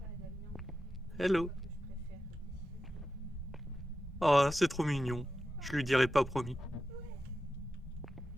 Hello. Oh, c'est trop mignon. Je lui dirai pas promis.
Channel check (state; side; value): normal; both; correlation 0.91